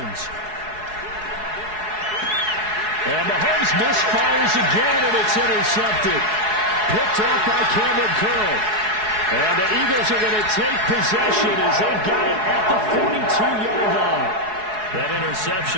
And Mahomes misfires again, and it's intercepted. Picked off by Cameron Curl. And the Eagles are going to take possession as they've got it at the 42-yard line. That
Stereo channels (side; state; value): left; late; 4.7 ms